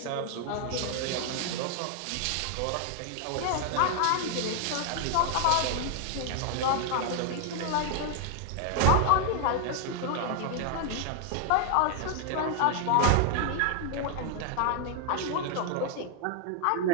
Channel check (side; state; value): both; different; correlation 0.00